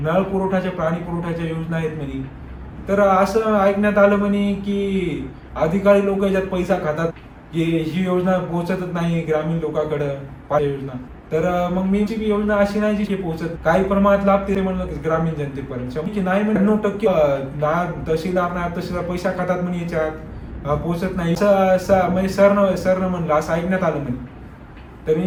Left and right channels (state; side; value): identical; both; correlation 1.00